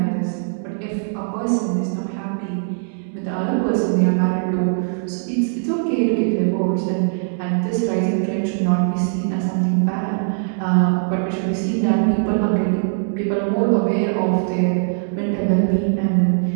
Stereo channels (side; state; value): left; silent; digital silence